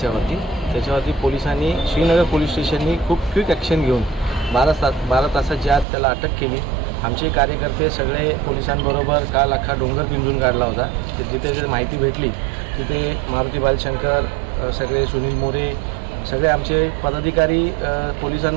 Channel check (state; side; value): drops out; left; at 5.9 s